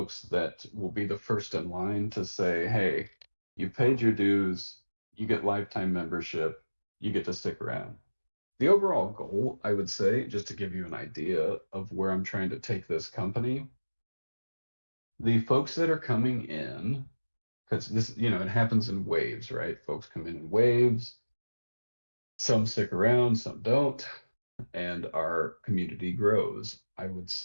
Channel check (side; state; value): both; inverted; correlation -1.00